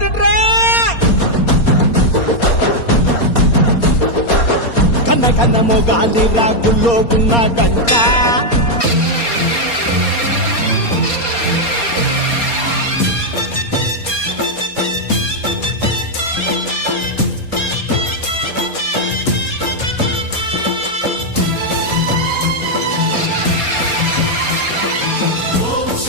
కన్న కన్న మొగాలి రాగుల్లో ఉన్న గంట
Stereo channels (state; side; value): late; right; 4.3 ms